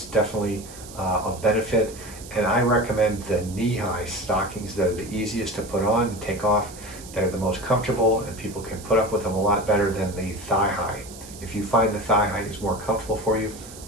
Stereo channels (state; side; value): noise; right; hiss, 16 dB below the sound